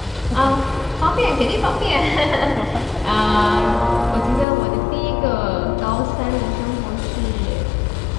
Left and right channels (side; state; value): right; drops out; at 4.5 s